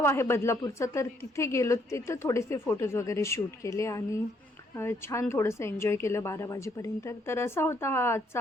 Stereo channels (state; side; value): normal; both; correlation 0.70